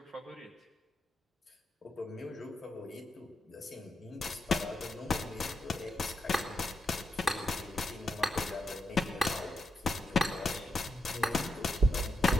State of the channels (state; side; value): normal; both; correlation 0.84